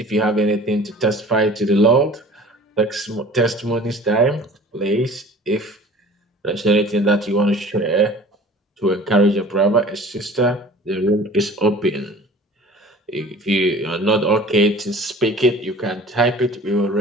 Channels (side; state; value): both; normal; correlation 0.45